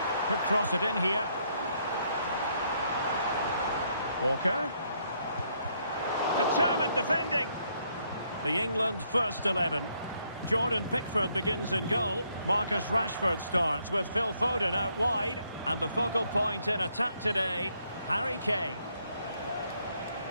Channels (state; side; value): inverted; both; correlation -0.72